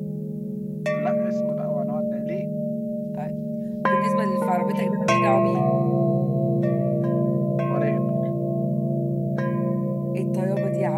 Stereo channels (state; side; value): identical; both; correlation 1.00